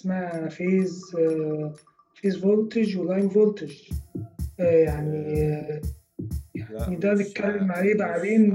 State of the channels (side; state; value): both; identical; correlation 1.00